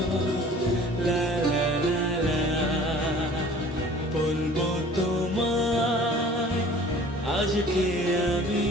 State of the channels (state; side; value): normal; both; correlation 0.48